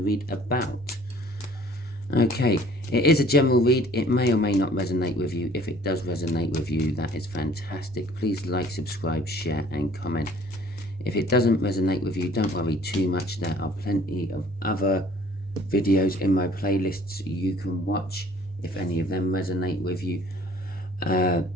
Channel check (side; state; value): both; normal; correlation 0.54